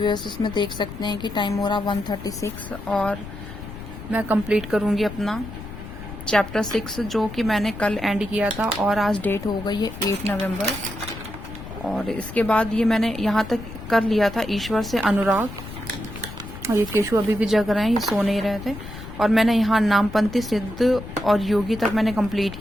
इसमें देख सकते हैं कि टाइम हो रहा 1:36 और मैं कंप्लीट करूँगी अपना चैप्टर 6 जो कि मैंने कल एंड किया था। और आज डेट हो गई है 8 नवंबर। और इसके बाद ये मैंने यहाँ तक कर लिया था, ईश्वर से अनुराग। और ये केशु अभी भी जग रहे हैं, ये सो नहीं रहे थे। और मैंने यहाँ नामपंथी, सिद्ध और योगी तक मैंने कंप्लीट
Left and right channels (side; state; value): left; noise; rumble, 12 dB below the sound